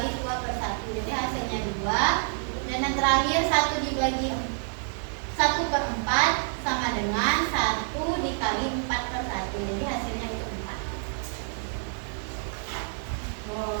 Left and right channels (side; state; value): left; silent; 59 dB below the other